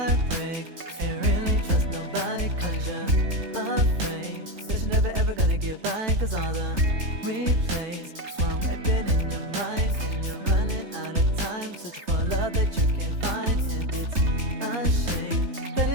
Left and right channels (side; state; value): left; late; 3.3 ms